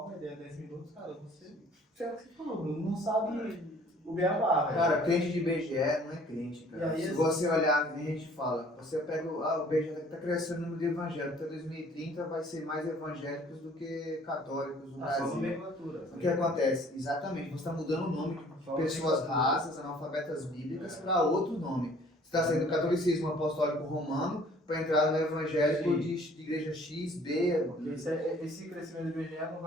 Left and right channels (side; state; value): both; normal; correlation 0.55